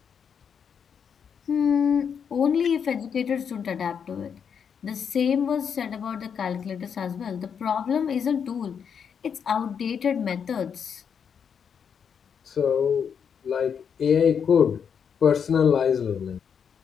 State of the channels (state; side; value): quieter; right; 7.2 dB